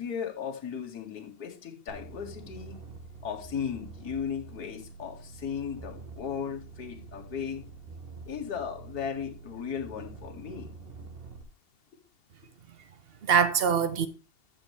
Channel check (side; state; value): left; late; 2.7 ms